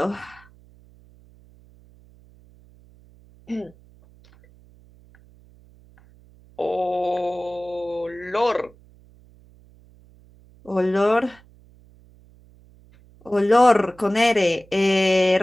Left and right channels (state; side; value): noise; right; hum, 27 dB below the sound